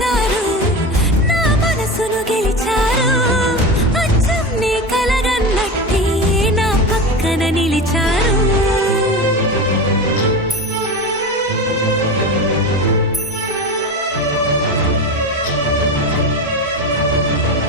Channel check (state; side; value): normal; both; correlation 0.25